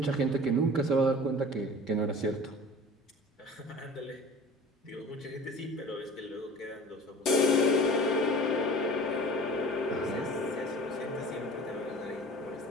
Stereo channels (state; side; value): normal; both; correlation 0.42